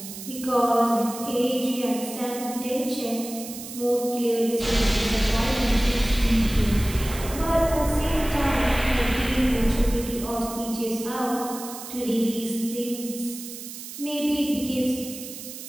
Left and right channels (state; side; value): noise; right; hiss, 11 dB below the sound